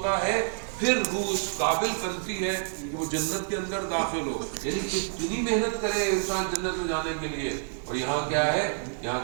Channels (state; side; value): silent; left; 59 dB below the other